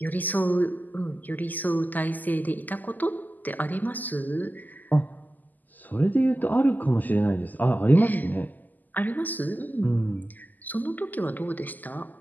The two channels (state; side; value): late; right; 0.084 ms